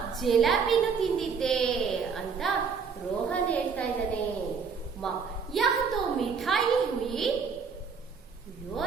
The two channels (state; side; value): quieter; left; 5.8 dB